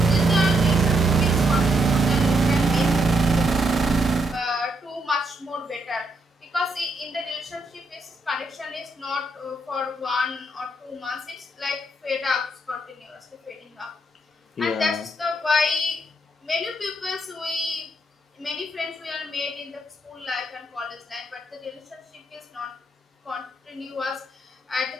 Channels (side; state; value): both; normal; correlation 0.77